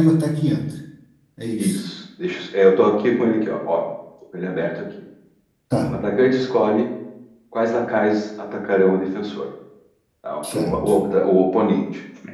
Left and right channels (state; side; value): identical; both; correlation 1.00